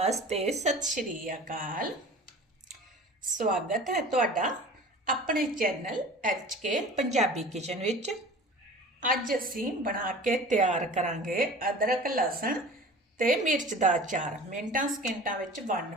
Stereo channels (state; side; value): normal; both; correlation 0.41